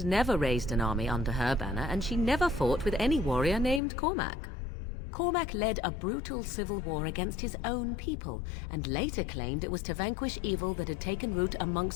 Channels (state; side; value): drops out; right; at 3.8 s